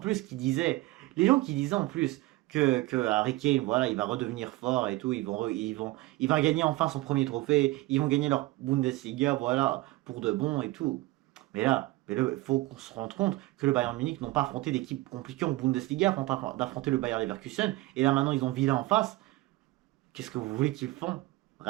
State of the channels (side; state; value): left; quieter; 19.6 dB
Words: disaient en plus que Harry Kane, voilà, il va redevenir fort et tout. Il va gagner enfin son premier trophée. Ils vont gagner leur Bundesliga, voilà, pour de bon et tout. Mais là, il faut qu'on se rende compte que le Bayern Munich n'ont pas affronté d'équipes compliquées en Bundesliga avant d'affronter le Bayern Leverkusen. Et là maintenant, ils ont Villa en face. Qu'est-ce que vous voulez qu'ils font?